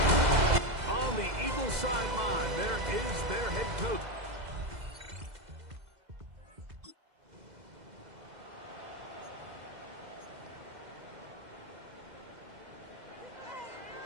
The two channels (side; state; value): left; late; 2.0 ms